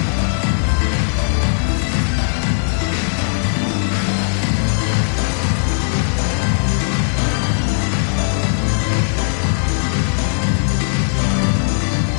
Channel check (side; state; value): right; silent; digital silence